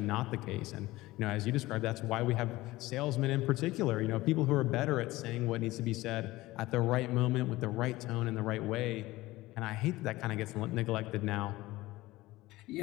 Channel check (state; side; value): quieter; right; 18.6 dB